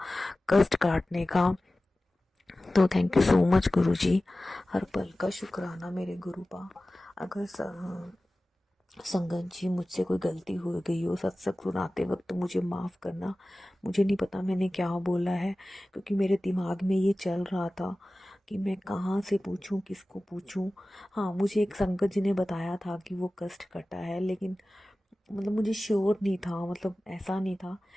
कष्ट काटने का। तो थैंक यू सो मच गुरुजी, हर पल का शुक्राना मेरे गुरु का। अगर संगत जी मुझसे कोई गलती हो गई हो सत्संग सुनाते वक्त तो मुझे माफ़ करना। मुझे नहीं पता मैंने क्या बोला है, क्योंकि मेरे दिमाग में ये चल रहा था कि मैं कहाँ से पूछूं, किसको पूछूं। हाँ, मुझे एक संगत जी ने बताया था कि वो कष्ट कटा है, लेकिन मतलब मुझे श्योर नहीं था, मतलब ऐसा नहीं था।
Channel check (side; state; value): both; normal; correlation 0.96